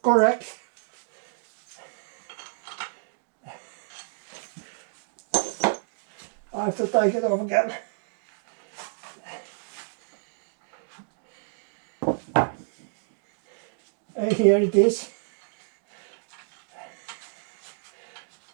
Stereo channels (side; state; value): left; silent; digital silence